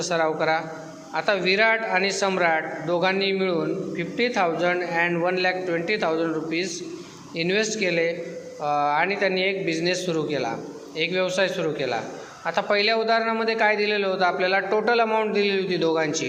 सराव करा. आता विराट आणि सम्राट दोघांनी मिळून 50,000 अँड 1,20,000 रुपीज इन्व्हेस्ट केले आणि त्यांनी एक बिझनेस सुरू केला, एक व्यवसाय सुरू केला. आता पहिल्या उदाहरणामध्ये काय दिलेलं होतं आपल्याला टोटल अमाऊंट दिलेली होती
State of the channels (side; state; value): both; identical; correlation 1.00